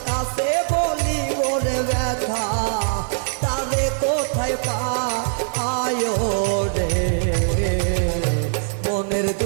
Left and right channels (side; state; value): left; silent; digital silence